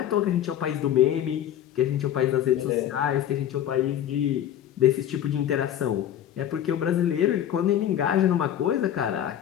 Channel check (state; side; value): quieter; right; 10.8 dB